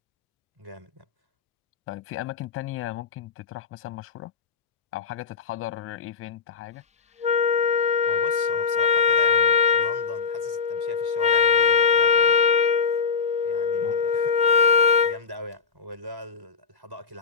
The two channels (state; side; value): quieter; right; 5.6 dB